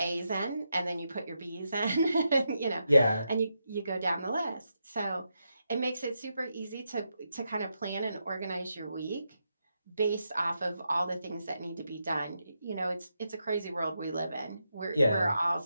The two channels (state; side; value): inverted; both; correlation -0.85